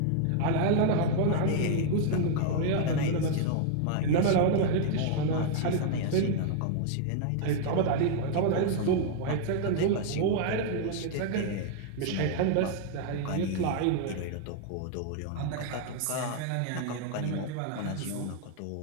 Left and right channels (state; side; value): different; both; correlation 0.00